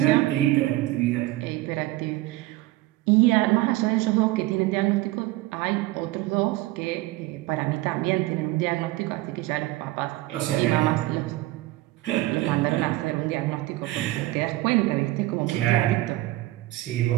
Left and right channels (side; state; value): left; quieter; 18.0 dB